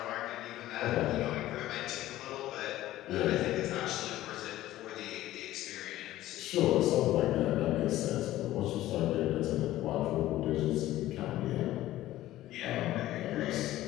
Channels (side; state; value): right; quieter; 14.9 dB